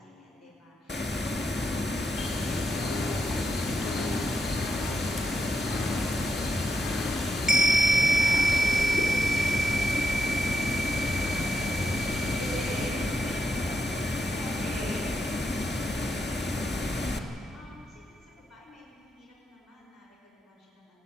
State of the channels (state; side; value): normal; both; correlation 0.81